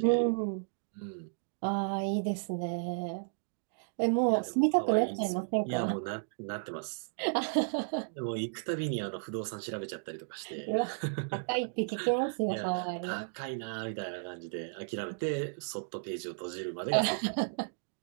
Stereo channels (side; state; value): left; silent; digital silence